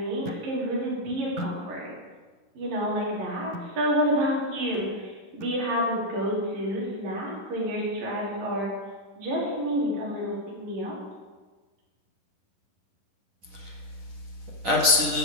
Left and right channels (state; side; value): late; left; 10 ms